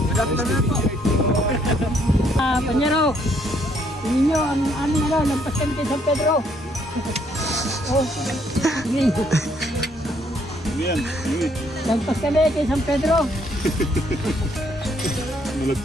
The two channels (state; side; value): normal; both; correlation 0.68